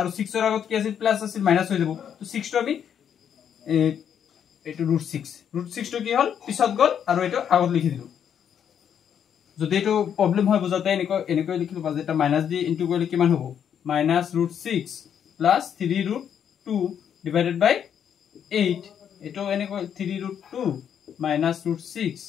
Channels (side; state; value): right; quieter; 8.6 dB